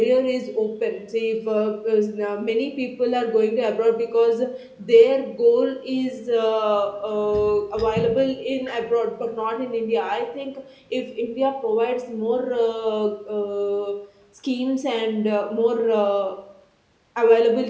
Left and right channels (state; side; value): identical; both; correlation 1.00